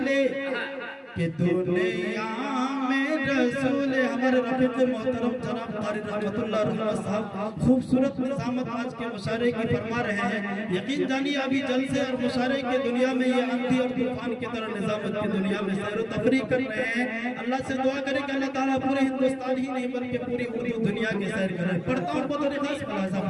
رسول ہمارے رفیق محترم جناب قاری رحمت اللہ رحمت صاحب خوبصورت نظامت آج کے مشاعرے کی فرما رہے ہیں. یقین جانیے ابھی جلسے اور مشاعرے کے دنیا میں یہ اندھی اور طوفان کی طرح نظامت کی دنیا میں سیر و تفریح کر رہے ہیں. اللہ سے دعا کریں کہ اللہ تعالیٰ پورے ہندوستان ہی نہیں بلکہ پوری اردو دنیا کی سیر کریں. پڑھتا ہوں بطور خاص ملاحظہ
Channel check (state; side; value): identical; both; correlation 1.00